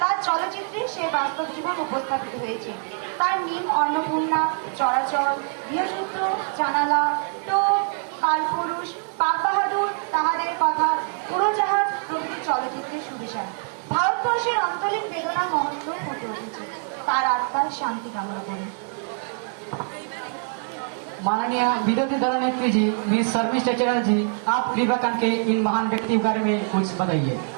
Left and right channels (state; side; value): silent; left; 62 dB below the other